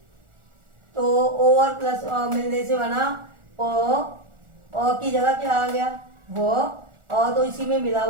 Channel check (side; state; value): left; late; 1.4 ms